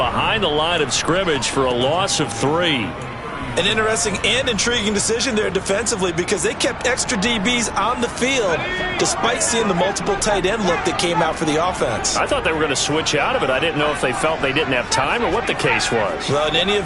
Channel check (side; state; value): both; identical; correlation 1.00